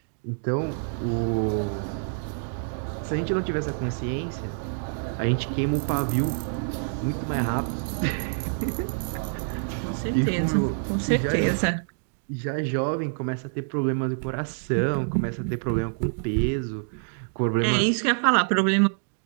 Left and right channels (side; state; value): left; silent; digital silence